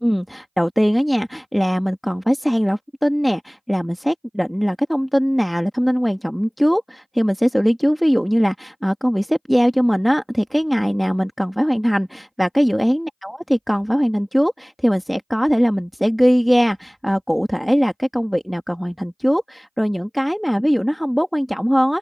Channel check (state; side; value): identical; both; correlation 1.00